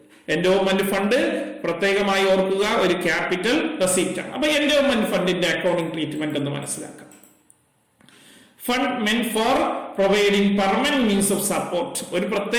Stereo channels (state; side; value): identical; both; correlation 1.00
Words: എൻഡോമെന്റ് ഫണ്ട് പ്രത്യേകമായി ഓർക്കുക ഒരു ക്യാപിറ്റൽ റെസീപ്റ്റ് ആണ്. അപ്പൊ എൻഡോമെന്റ് ഫണ്ടിന്റെ അക്കൗണ്ടിംഗ് ട്രീറ്റ്മെന്റ് എന്ന് മനസ്സിലാക്കാം. Fund മെന്റ് four providing permanent means of support. ഒരു